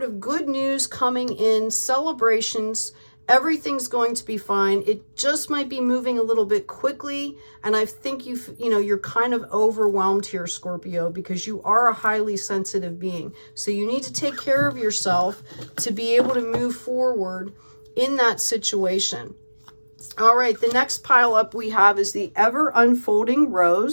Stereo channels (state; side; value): inverted; both; correlation -1.00